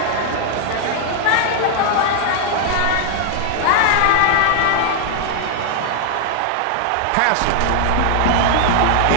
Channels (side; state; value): both; different; correlation 0.00